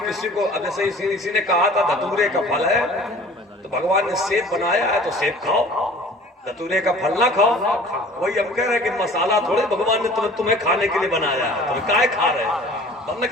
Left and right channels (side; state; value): both; normal; correlation 0.47